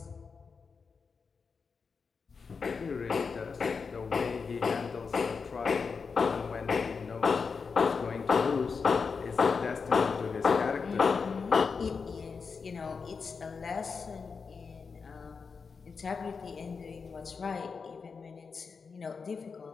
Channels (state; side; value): quieter; right; 5.2 dB